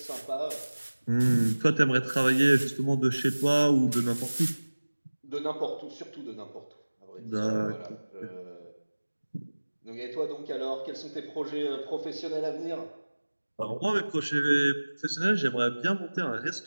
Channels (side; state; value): both; inverted; correlation -1.00